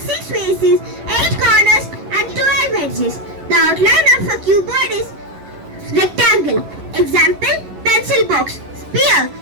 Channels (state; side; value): late; left; 11 ms